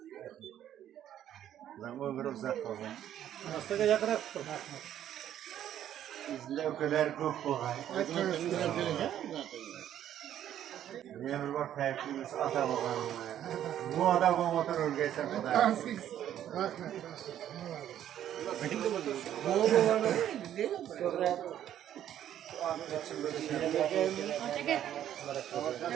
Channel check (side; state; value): left; quieter; 11.0 dB